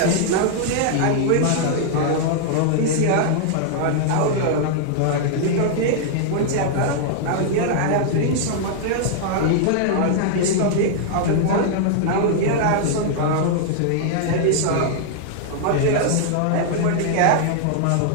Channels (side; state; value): both; different; correlation -0.01